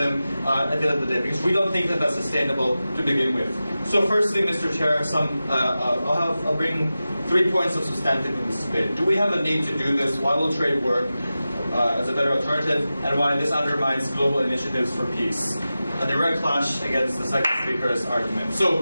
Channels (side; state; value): both; inverted; correlation -0.94